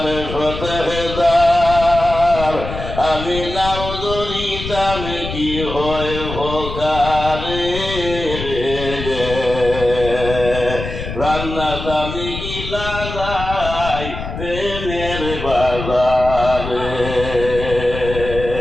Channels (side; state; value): left; noise; rumble, 8 dB below the sound